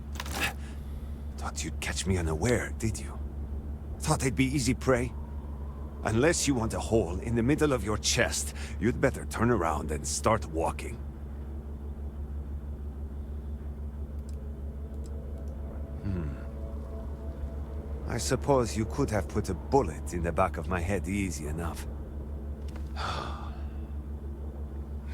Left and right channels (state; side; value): identical; both; correlation 1.00